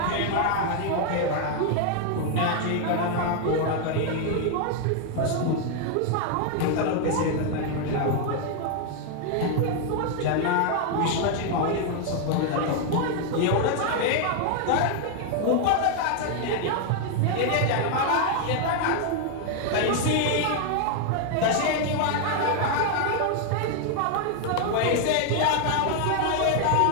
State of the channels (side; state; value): both; different; correlation 0.00